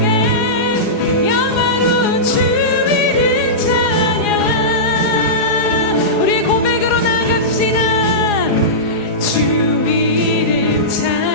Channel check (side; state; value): right; late; 4.8 ms